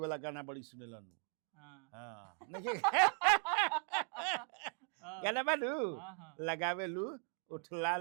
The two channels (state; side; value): quieter; left; 38.2 dB